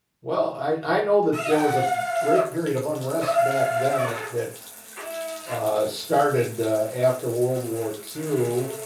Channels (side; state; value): both; identical; correlation 1.00